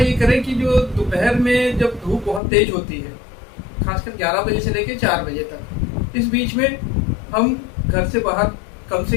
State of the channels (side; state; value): right; drops out; at 2.4 s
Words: करें कि जो दोपहर में जब धूप बहुत तेज होती है, खासकर 11 बजे से लेकर 4 बजे तक, इस बीच में हम घर से बाहर कम से